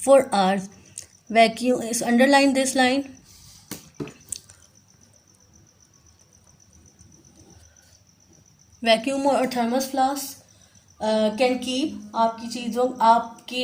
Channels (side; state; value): both; identical; correlation 1.00